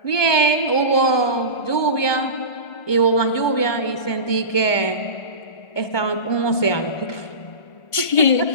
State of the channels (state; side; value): late; right; 1.5 ms